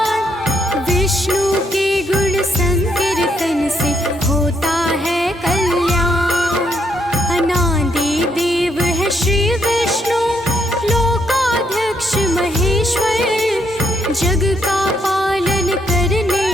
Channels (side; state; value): both; normal; correlation 0.74